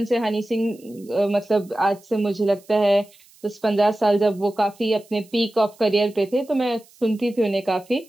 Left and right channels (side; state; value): right; noise; hiss, 28 dB below the sound